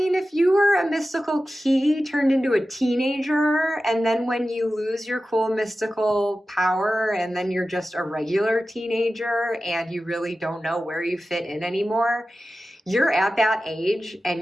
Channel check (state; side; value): normal; both; correlation 0.94